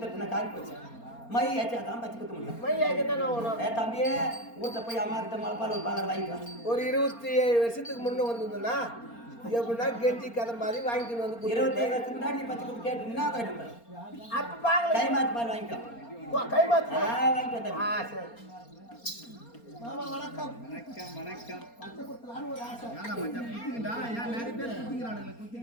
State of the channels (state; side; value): late; right; 4.3 ms